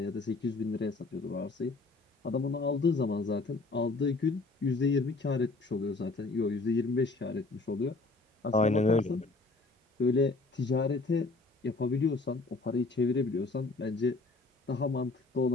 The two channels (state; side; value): quieter; right; 3.5 dB